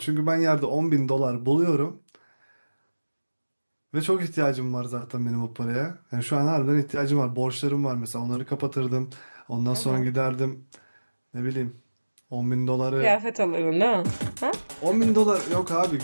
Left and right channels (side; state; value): both; inverted; correlation -1.00